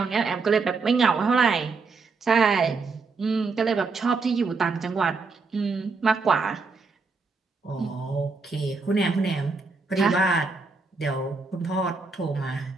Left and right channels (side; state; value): left; quieter; 4.3 dB